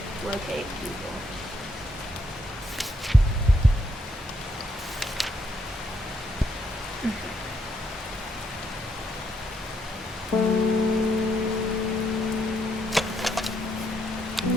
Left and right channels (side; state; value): both; normal; correlation 0.75